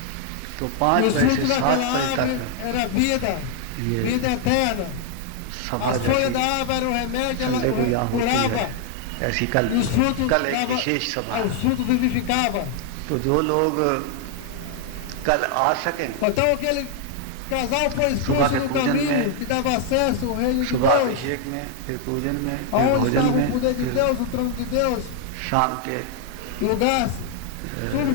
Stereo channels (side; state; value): both; different; correlation 0.00